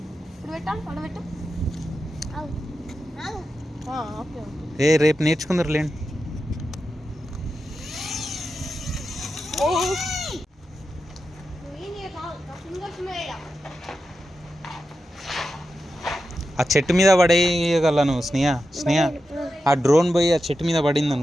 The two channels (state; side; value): normal; both; correlation 0.90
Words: ఇప్పుడు పెట్టాలి పడబెట్టు రేపు నేర్చుకుందరు లేండి ఆ చెట్టు మీద పడేయగలను స్నేహ ఆ డ్రోన్ పోయి ఆ చెట్టు మీద పడింది